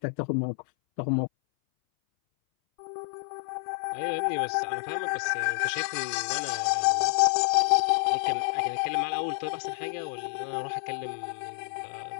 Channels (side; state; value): right; silent; 59 dB below the other